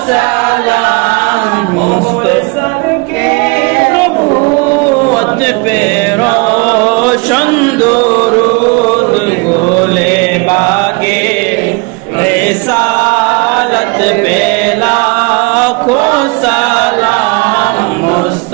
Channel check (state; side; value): quieter; left; 29.1 dB